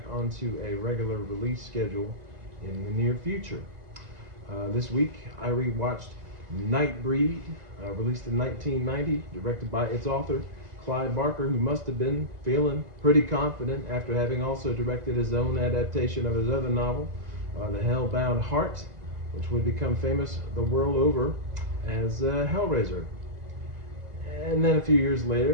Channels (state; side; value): late; left; 2.0 ms